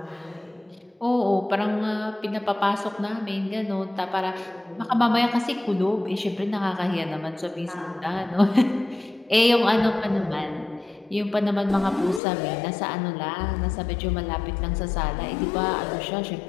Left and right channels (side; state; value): right; drops out; at 12.2 s